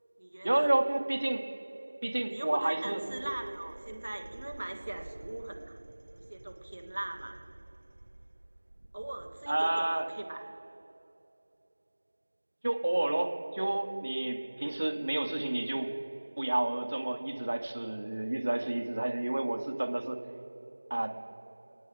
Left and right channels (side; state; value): both; inverted; correlation -1.00